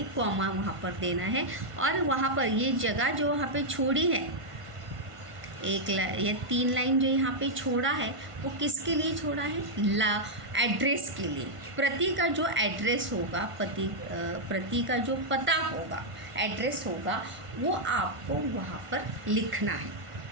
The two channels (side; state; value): left; late; 1.5 ms